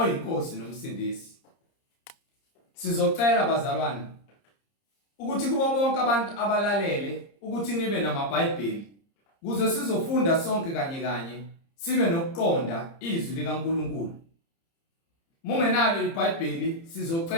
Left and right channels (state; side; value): late; right; 30 ms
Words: nomsindisi. Sizocela bazalwane ukuthi kubo bonke abantu abalalele ukuthi nibe namaBhayibheli kuze sizofunda sonke kanye sibe nokuqonda izwi likaNkulunkulu. Mungenalo iBhayibheli